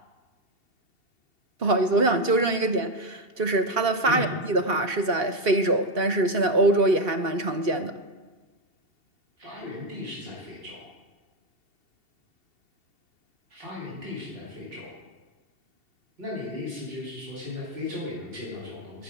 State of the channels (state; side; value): late; left; 2.7 ms